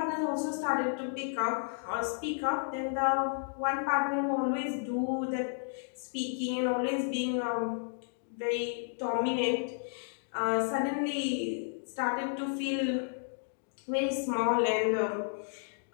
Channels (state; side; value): silent; right; digital silence